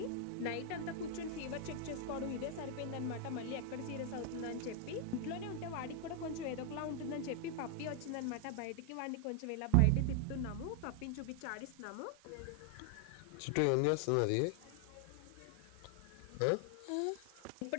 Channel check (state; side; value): different; both; correlation 0.00